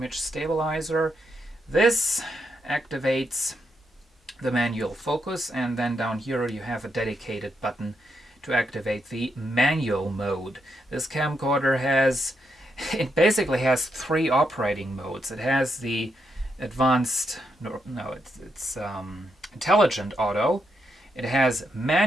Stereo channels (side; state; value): both; normal; correlation 0.81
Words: Stabilizer. This activates the manual focus, and then down here you have a dedicated button to activate the manual mode. This camcorder basically has 3 operating modes. It has the advanced, it's intelligent auto, it has